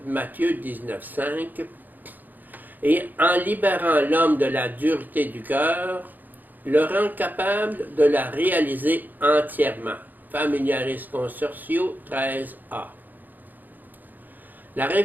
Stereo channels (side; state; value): left; late; 0.086 ms